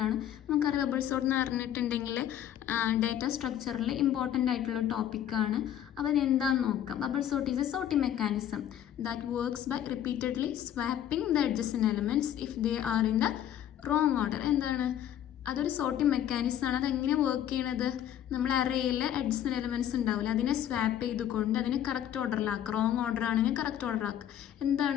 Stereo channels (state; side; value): quieter; right; 10.8 dB